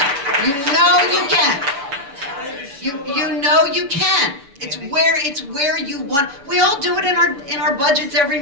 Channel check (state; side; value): late; left; 7.0 ms